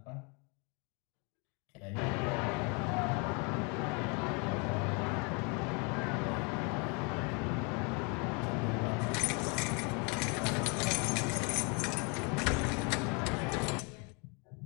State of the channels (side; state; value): right; quieter; 32.6 dB